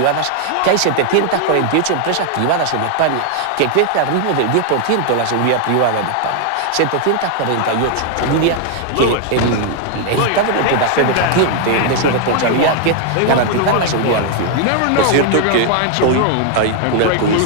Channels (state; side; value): different; both; correlation 0.00